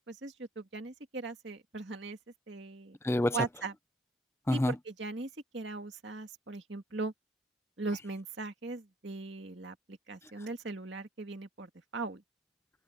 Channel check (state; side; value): normal; both; correlation 0.63